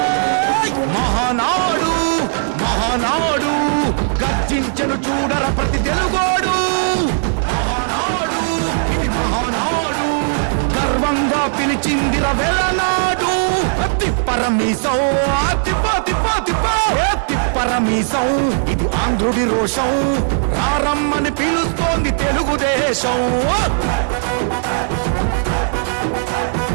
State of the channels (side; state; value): left; silent; digital silence